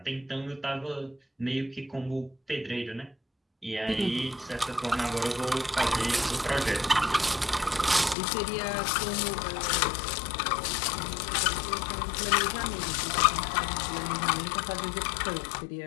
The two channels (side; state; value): right; drops out; at 8.2 s